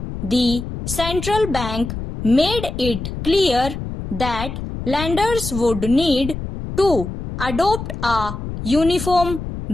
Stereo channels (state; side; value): noise; left; rumble, 7 dB below the sound